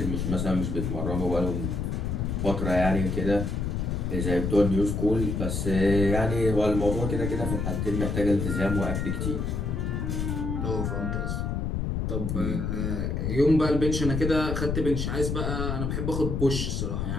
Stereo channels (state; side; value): noise; left; rumble, 1 dB below the sound